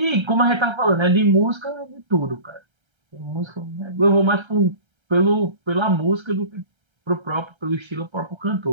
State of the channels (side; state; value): left; late; 1.3 ms